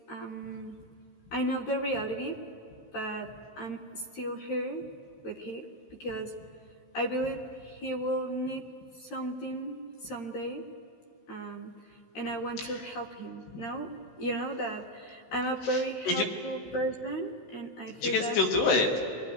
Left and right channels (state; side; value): late; right; 16 ms